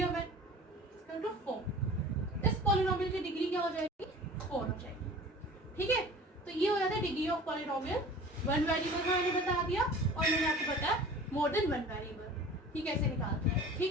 और 1, इसका 2 4। इस पॉलिनोमियल की डिग्री क्या हो जाएगी 4 हो जाएगी। ठीक है, तो ये हो जाता है degree of polynomial. One variable का मैंने बता दिया और मैंने आपको बताया मोर देन वन वेरिएबल ये कैसे निकालते हैं।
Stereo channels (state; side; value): normal; both; correlation 0.42